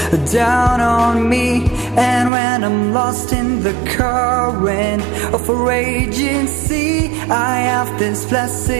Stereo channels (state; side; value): drops out; left; at 2.3 s